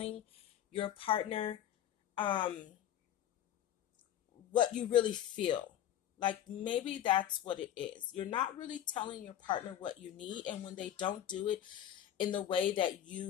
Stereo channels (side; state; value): right; quieter; 11.0 dB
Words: your partner what you really feel. Like maybe that's what it is. You're not really telling your partner what you need, and when they don't do it in the way that